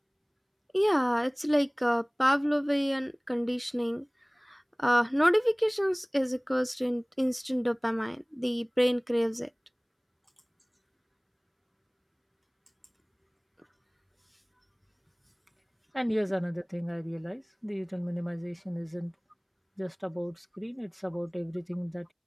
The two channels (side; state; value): both; identical; correlation 1.00